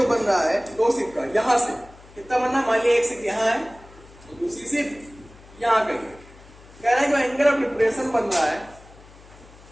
बन रहा है दो शिप का, यहां से कितना बनना, मान लिया एक शिप यहाँ है और दूसरी शिप यहाँ कहीं है। कह रहा है जो एंगल ऑफ डिप्रेशन बन रहा है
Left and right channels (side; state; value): left; noise; hum, 22 dB below the sound